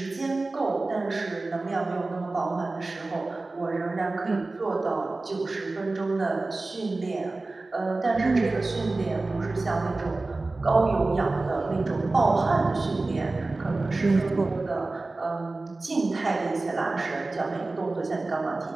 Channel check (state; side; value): quieter; left; 3.3 dB